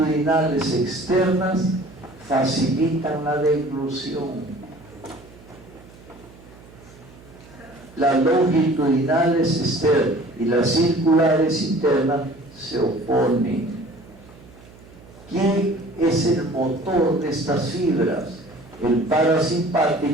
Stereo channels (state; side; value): noise; right; hum, 22 dB below the sound